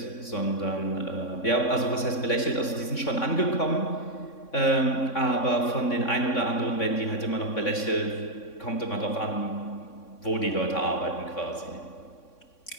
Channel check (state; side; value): late; right; 3.6 ms